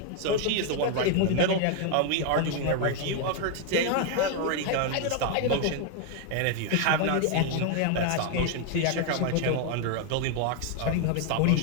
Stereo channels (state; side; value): different; both; correlation 0.01